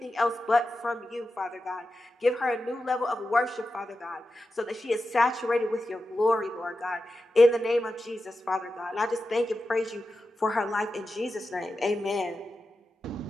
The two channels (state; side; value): normal; both; correlation 0.91